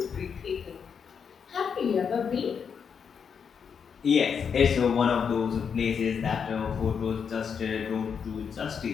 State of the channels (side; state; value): right; quieter; 6.7 dB